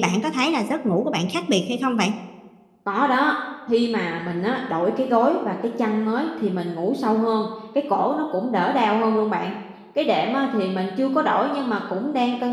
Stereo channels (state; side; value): identical; both; correlation 1.00